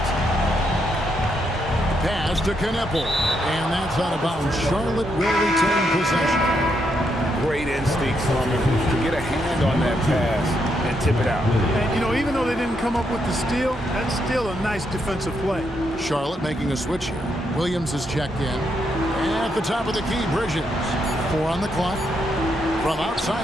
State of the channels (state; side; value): normal; both; correlation 0.79